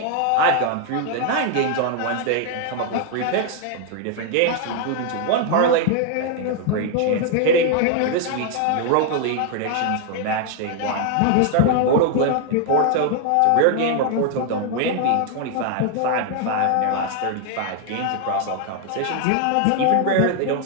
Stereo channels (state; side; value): different; both; correlation 0.00